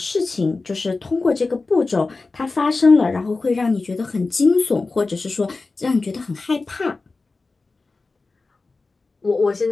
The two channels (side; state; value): right; quieter; 3.7 dB